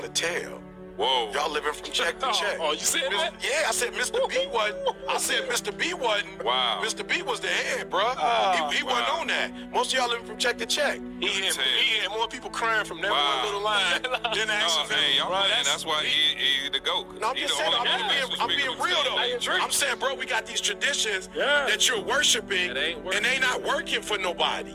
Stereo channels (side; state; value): both; identical; correlation 1.00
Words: tell. Whoa. Y'all living from check to check. Oh, you said that? Yeah, I said Mr. B wasn't. I said Mr. B wasn't. Wow. Mr. B was the head, bro. He wasn't on that. Most of y'all living from check to check. He had more people crying from that one little line than the action film. Hey, y'all playing. That's why he the GOAT. No, I'm just saying, I'm being real though. I'm saying, bro, we got these traditions that you're worshiping, and they not working for nobody.